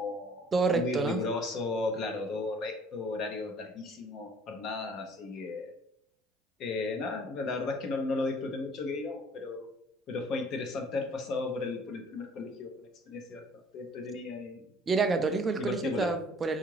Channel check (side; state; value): both; normal; correlation 0.55